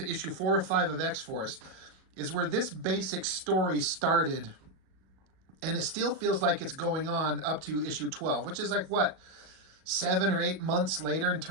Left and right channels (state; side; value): late; left; 37 ms